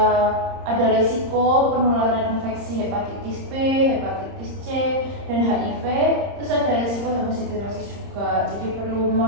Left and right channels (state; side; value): late; left; 30 ms